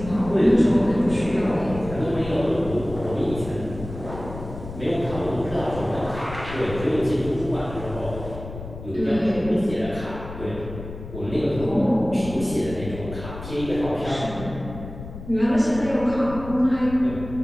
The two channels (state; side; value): noise; left; rumble, 11 dB below the sound